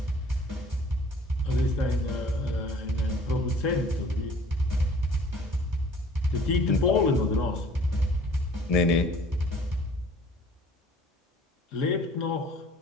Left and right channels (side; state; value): both; normal; correlation 0.52